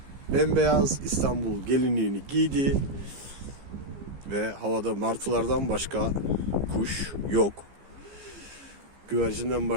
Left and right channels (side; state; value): left; late; 15 ms